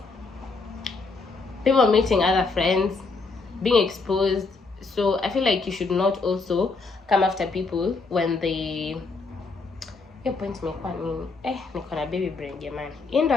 people meeting other friends, being exposed. So I feel like you should not also come after people when they point niko na baby brain jamani. Ndo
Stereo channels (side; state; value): right; quieter; 4.0 dB